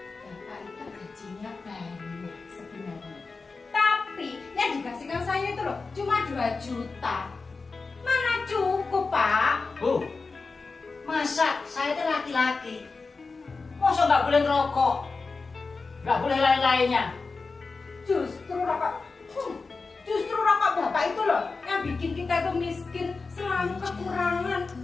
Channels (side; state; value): right; quieter; 4.2 dB